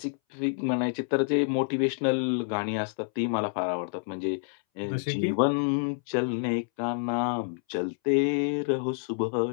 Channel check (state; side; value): silent; right; 59 dB below the other